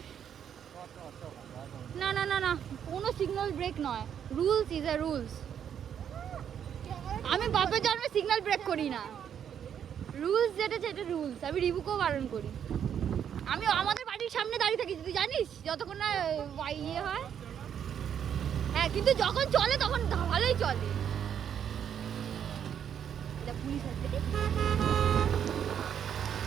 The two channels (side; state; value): left; quieter; 8.7 dB